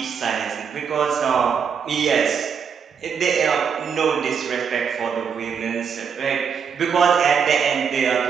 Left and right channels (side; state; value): left; quieter; 6.8 dB